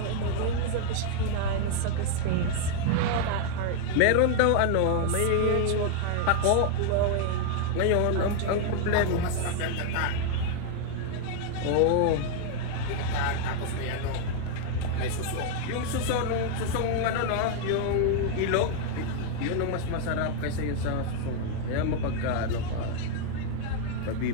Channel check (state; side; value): different; both; correlation 0.00